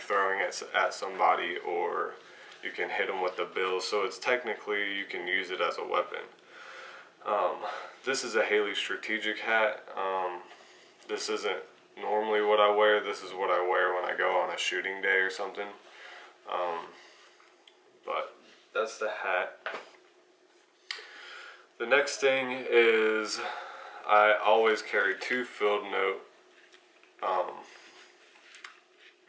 it at somebody, or you can hit them with the bill. So it's technically, you can use it as a weapon. This is a Haley strategic hat. This isn't normally what I wear. This is what I wear when I go on a shooting day or something. But that's the hat. The next thing is I always carry two field note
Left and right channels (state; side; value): identical; both; correlation 1.00